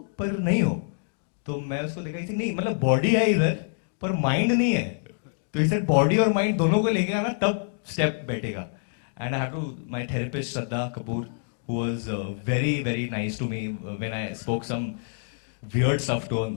पर नहीं हो तो मैं उसको देखा थी नहीं मतलब बॉडी है इधर पर माइंड नहीं है तो इसे बॉडी और माइंड दोनों को लेके आना तब स्टेप बैठेगा and I have to my therapist Shraddha Kapoor who was very nice to me when I spoke some weird stuff to on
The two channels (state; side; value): silent; right; digital silence